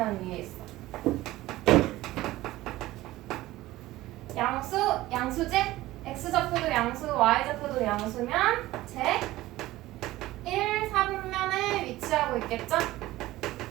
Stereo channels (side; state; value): left; quieter; 17.0 dB